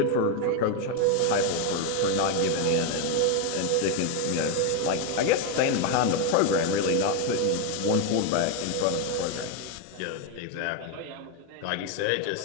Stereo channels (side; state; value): both; different; correlation 0.02